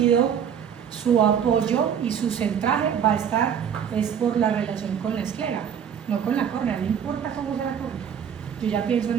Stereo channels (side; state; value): left; quieter; 8.1 dB